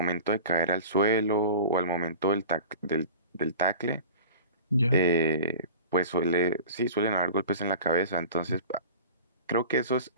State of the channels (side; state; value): both; inverted; correlation -0.38